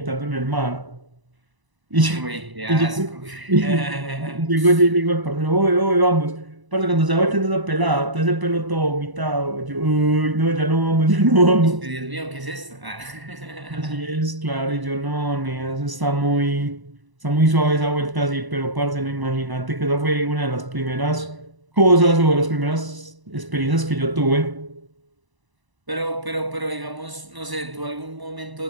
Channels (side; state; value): left; late; 1.0 ms